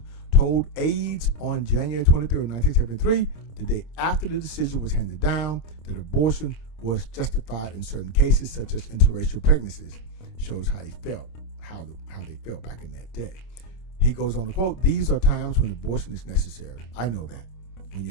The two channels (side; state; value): right; late; 26 ms